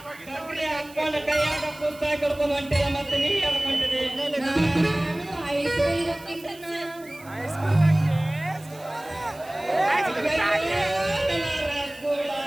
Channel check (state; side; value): noise; right; hiss, 22 dB below the sound